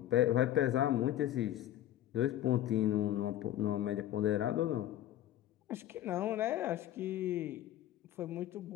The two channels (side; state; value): right; quieter; 12.7 dB